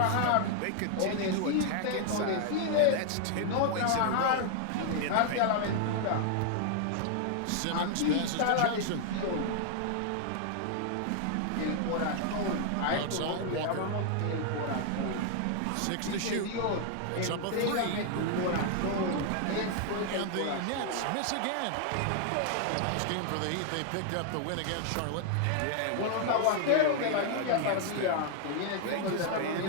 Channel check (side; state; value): both; different; correlation 0.00